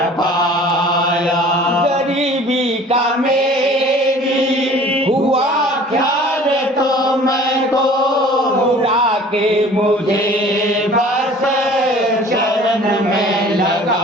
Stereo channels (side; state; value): both; normal; correlation 0.48